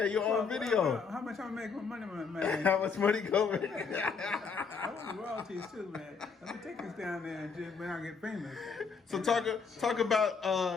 you're on video. How much I'm making money, man? How much money going? I want the royalties too, man. Let me take this down there and just when I get famous. So talk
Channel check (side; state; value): right; quieter; 5.4 dB